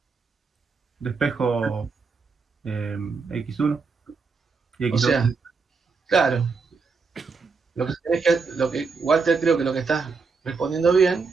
Despejo X1 y O X2. sea, claro, lo que Walter, creo que lo que estás respondiendo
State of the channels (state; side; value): quieter; left; 4.8 dB